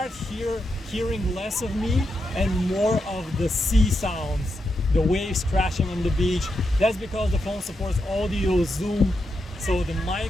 hearing less of me and more of the sea sounds, the waves crashing on the beach. That's because the phone supports audio zoom, so the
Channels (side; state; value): both; normal; correlation 0.84